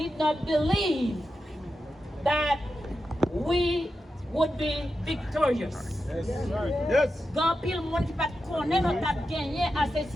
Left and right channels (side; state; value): both; normal; correlation 0.89